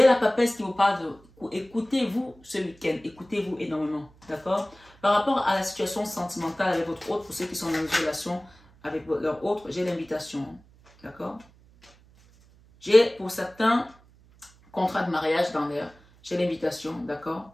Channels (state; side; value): noise; right; hum, 27 dB below the sound